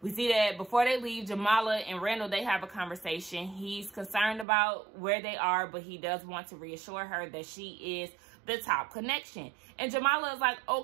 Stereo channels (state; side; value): drops out; left; at 4.5 s